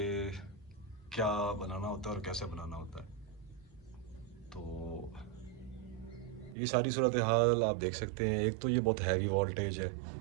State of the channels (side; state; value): left; drops out; at 6.6 s